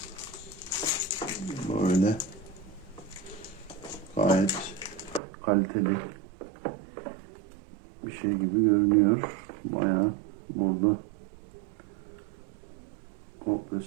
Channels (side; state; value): left; drops out; at 5.2 s